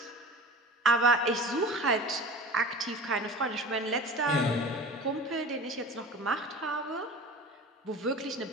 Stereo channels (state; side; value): normal; both; correlation 0.37